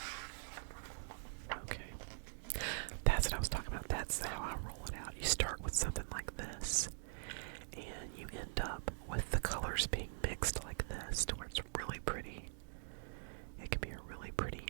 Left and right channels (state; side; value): silent; left; digital silence